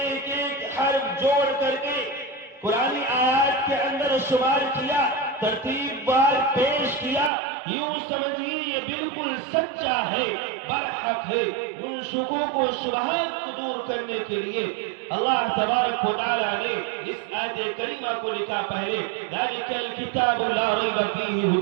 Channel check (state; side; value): drops out; left; at 7.3 s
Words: ایک حرف جوڑ کر کے قرآنی آیات کے اندر شمار کیا، ترتیب بار پیش کیا، یوں سمجھیے یہ بالکل سچا ہے، برحق ہے۔ ان شکوک و شبہات کو دور کرنے کے لیے اللہ تبارک و تعالی نے اس آیت کریمہ کو لکھا پہلے ذالک الکتاب لا ریب فیہ